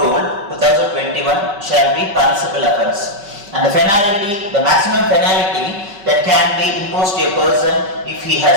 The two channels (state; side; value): late; left; 5.1 ms